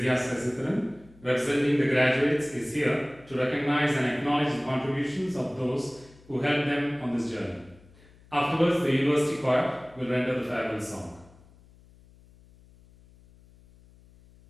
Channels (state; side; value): noise; left; hum, 26 dB below the sound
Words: Sesitharan, representing the graduates, is here to recognize and acknowledge the contributions of those who helped them on this journey. Afterwards, the university choir will render the farewell song.